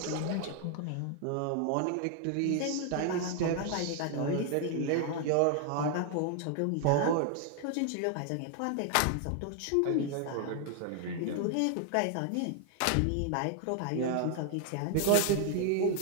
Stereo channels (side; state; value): both; different; correlation 0.00